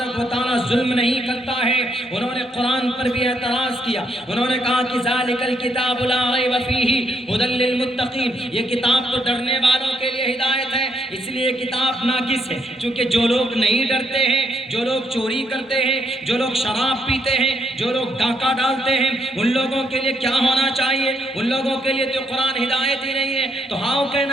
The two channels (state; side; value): normal; both; correlation 0.75